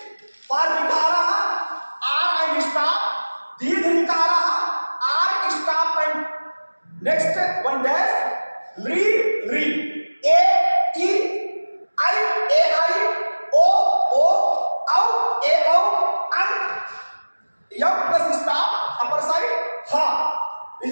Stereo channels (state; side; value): inverted; both; correlation -1.00